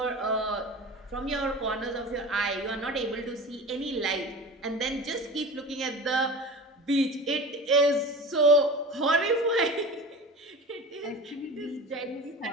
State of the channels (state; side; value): normal; both; correlation 0.34